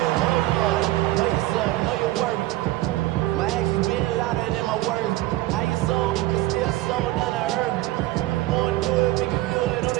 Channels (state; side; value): quieter; left; 17.2 dB